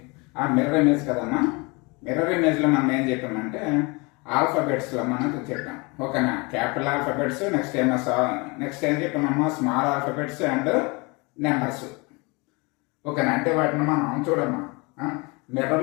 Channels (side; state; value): right; quieter; 27.9 dB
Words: మిర్రర్ ఇమేజ్ కదమ్మా. మిర్రర్ ఇమేజ్లో మనం ఏం చెప్పామంటే ఆల్ఫాబెట్స్లో మనం చెప్పాం. ఓకేనా, క్యాపిటల్ ఆల్ఫాబెట్స్, నెక్స్ట్ ఏం చెప్పామమ్మా స్మాల్ ఆల్ఫాబెట్స్ అండ్ నెంబర్స్. ఓకేనా, అంటే వాటిని మనం చూడమ్మా